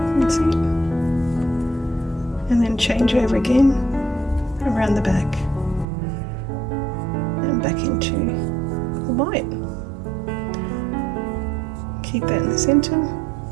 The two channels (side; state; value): left; drops out; at 5.9 s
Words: That's it. And then change over again around the back and back into the white. Keep that in the center